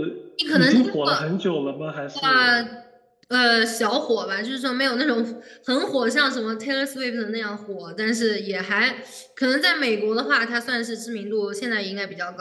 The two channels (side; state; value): both; identical; correlation 1.00